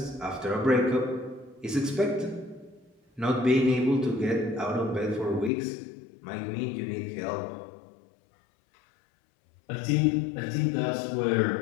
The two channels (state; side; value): drops out; right; at 5.5 s